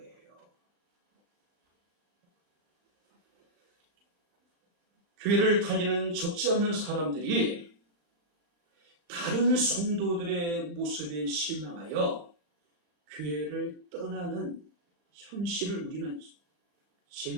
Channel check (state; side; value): late; left; 35 ms